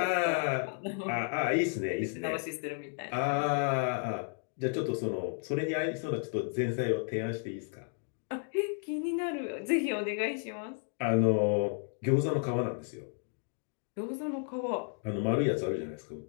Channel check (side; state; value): right; silent; 56 dB below the other